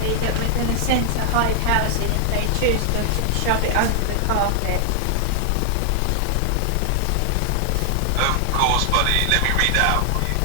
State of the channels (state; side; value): different; both; correlation 0.00